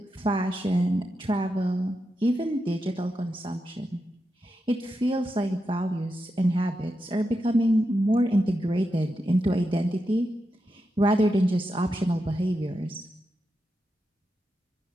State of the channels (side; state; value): both; normal; correlation 0.87